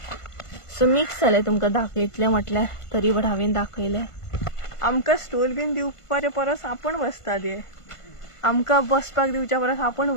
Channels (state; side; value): late; right; 1.5 ms